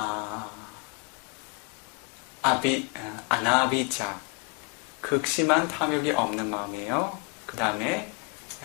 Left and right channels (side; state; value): right; quieter; 32.7 dB